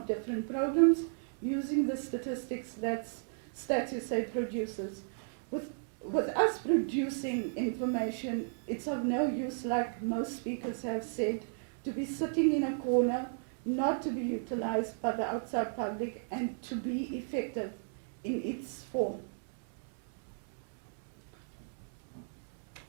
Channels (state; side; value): silent; left; digital silence